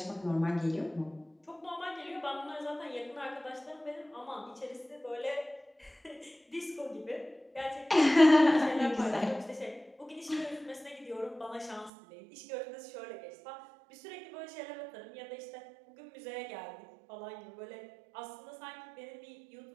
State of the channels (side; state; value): left; drops out; at 11.9 s